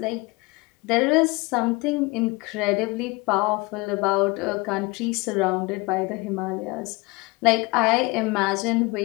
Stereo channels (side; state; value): right; quieter; 25.2 dB